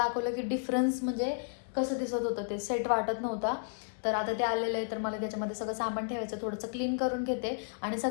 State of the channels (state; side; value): silent; right; 56 dB below the other